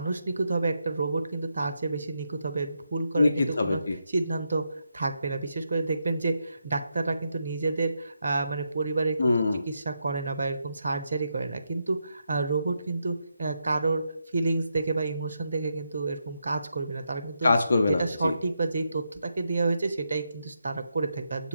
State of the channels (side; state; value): both; inverted; correlation -0.82